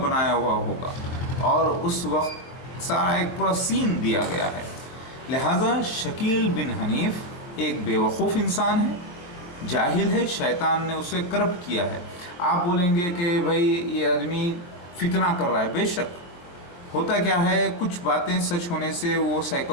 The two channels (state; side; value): late; right; 23 ms